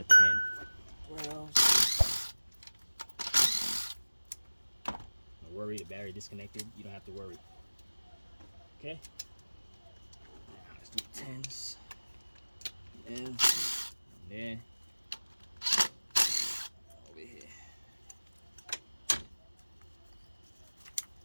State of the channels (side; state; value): both; inverted; correlation -1.00